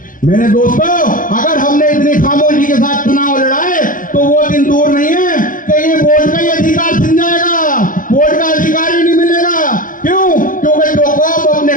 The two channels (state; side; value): late; right; 0.39 ms